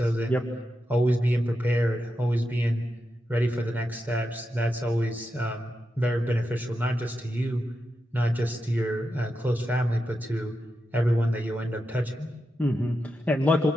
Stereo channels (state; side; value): normal; both; correlation 0.88